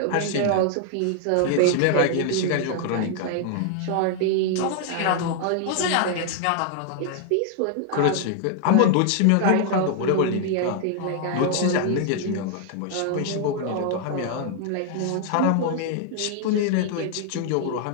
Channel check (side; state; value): both; different; correlation 0.00